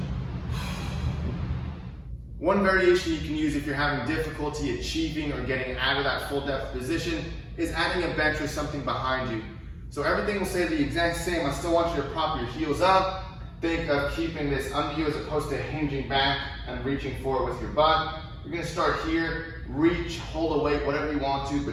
One variation you can use if you're having difficulty achieving or getting out of that full depth position is adding a bench or something behind you. So everything will stay the exact same. I still want you to prop your heels up. Think of keeping this under you as opposed to hinging back and reaching forward with your butt. You're going to start here, reach, hold a weight, whatever you want to,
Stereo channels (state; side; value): identical; both; correlation 1.00